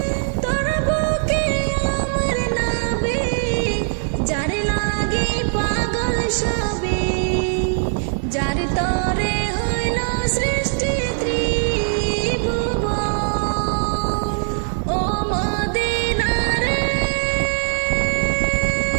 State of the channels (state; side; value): silent; left; digital silence